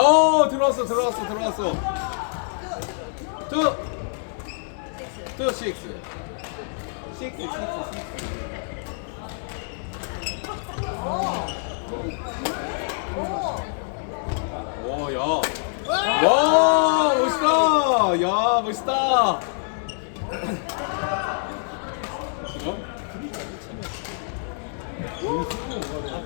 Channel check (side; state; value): right; silent; 60 dB below the other